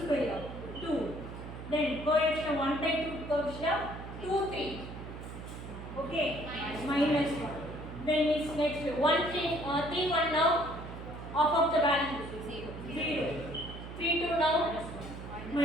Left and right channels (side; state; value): right; noise; hum, 10 dB below the sound